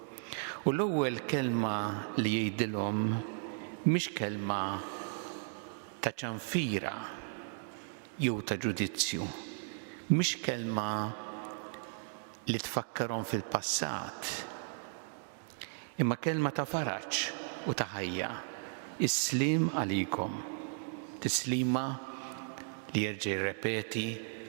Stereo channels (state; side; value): silent; left; digital silence